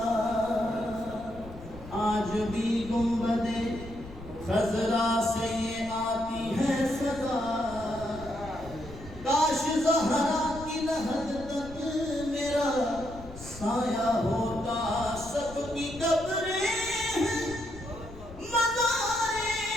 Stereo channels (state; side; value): noise; left; rumble, 16 dB below the sound